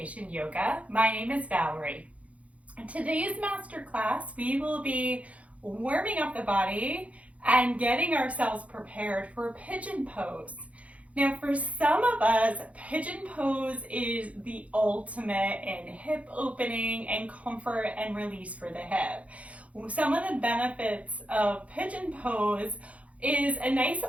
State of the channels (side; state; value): left; late; 0.066 ms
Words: Yoga. My name is Valerie. In today's masterclass, we will be warming up the body and getting ourselves prepared for Pigeon Pose. Now, for some of us, Pigeon Pose is the ultimate in hip opening and comfort and release for the hip. Some of the benefits of Pigeon Pose is a nice